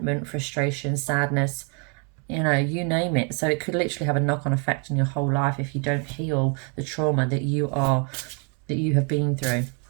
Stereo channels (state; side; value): quieter; left; 36.6 dB